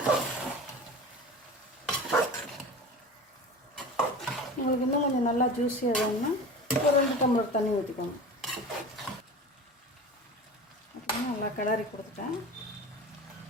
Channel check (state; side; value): normal; both; correlation 0.34